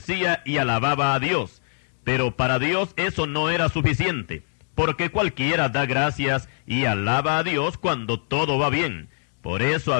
y alababa a Dios. Pero para Dios eso no era suficiente, porque cualquiera da gracias y alaba a Dios cuando todo va bien. Por eso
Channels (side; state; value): right; silent; digital silence